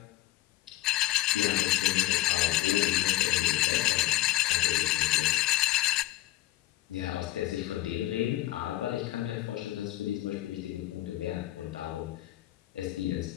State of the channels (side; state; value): right; quieter; 16.0 dB